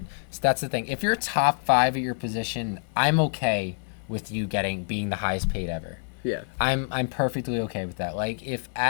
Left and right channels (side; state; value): right; silent; 55 dB below the other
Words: So that's the thing. If you're top 5 at your position, I'm okay with you being the highest paid ever. Yeah. I'm perfectly okay with that. Like, if